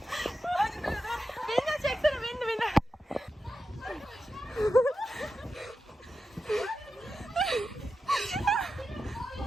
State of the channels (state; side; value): normal; both; correlation 0.90